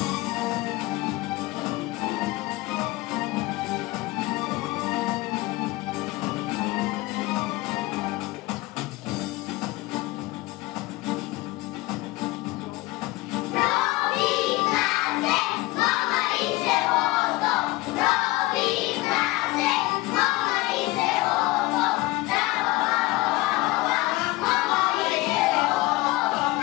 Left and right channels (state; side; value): quieter; right; 20.3 dB